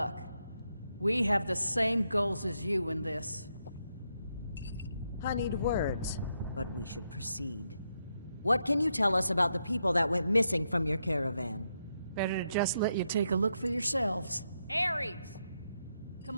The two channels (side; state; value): both; inverted; correlation -0.81